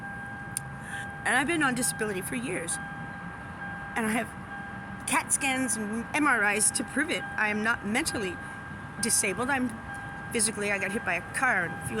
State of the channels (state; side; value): identical; both; correlation 1.00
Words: And I've been on disability for years. And I have CAT scans and MRIs to prove it. I am not mentally disabled. I got hit by a car and a